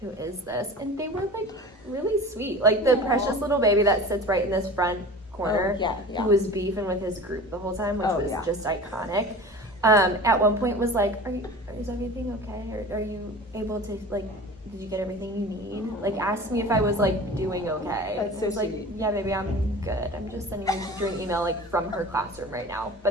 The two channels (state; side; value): normal; both; correlation 0.38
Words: who is this? And they were like really sweet. Like the precious little baby that sits right in this front corner, yeah. who was beefing with his group the whole time, which was just iconic. At one point was like, is everything okay? Are you able to, like, did you get everything you need? Like, asked me if I was, like, doing okay. That's so I was like, sweet. yeah, baby, I'm good. I'm just sending you an email, like, from her classroom right now,